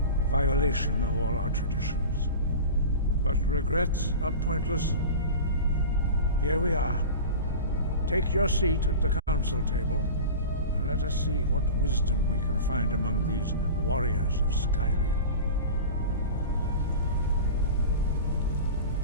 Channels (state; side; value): inverted; both; correlation -0.32